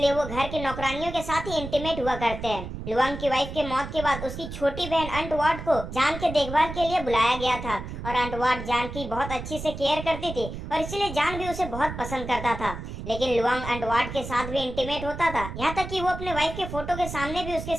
वो घर की नौकरानियों के साथ ही इंटीमेट हुआ करते हैं। लुआंग की वाइफ के मौत के बाद उसकी छोटी बहन अंटवाट को जान के देखभाल के लिए बुलाया गया था और अंटवाट जान की बहुत अच्छी से केयर करती थी और इसलिए जान भी उसे बहुत पसंद करता था। लेकिन लुआंग अंटवाट के साथ भी इंटीमेट होता था, यहाँ तक कि वो अपने वाइफ के फोटो के सामने भी उसके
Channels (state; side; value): noise; right; rumble, 8 dB below the sound